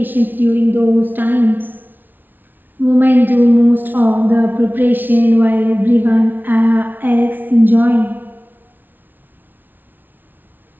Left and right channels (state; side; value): late; left; 0.089 ms